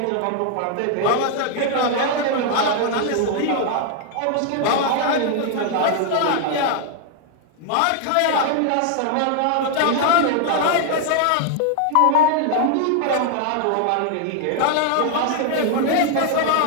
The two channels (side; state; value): both; different; correlation 0.00